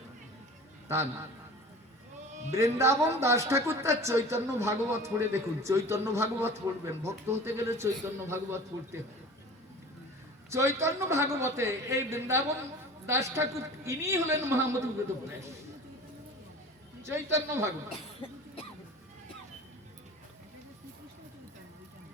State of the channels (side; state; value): both; normal; correlation 0.40